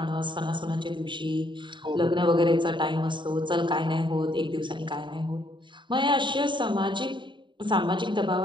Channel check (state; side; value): late; left; 0.23 ms